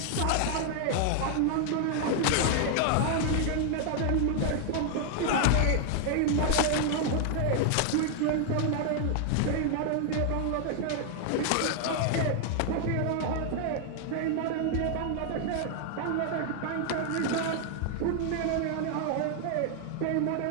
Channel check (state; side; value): different; both; correlation 0.00